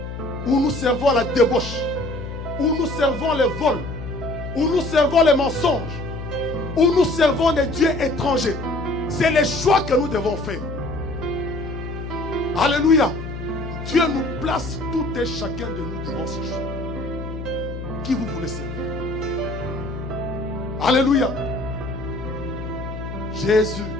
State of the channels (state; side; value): noise; left; hum, 8 dB below the sound